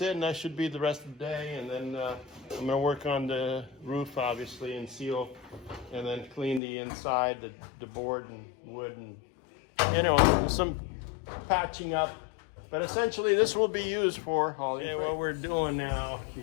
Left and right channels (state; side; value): drops out; right; at 6.6 s